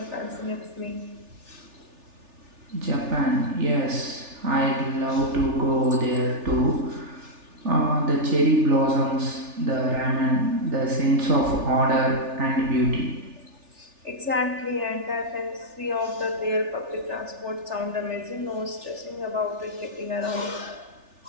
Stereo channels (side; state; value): left; late; 3.4 ms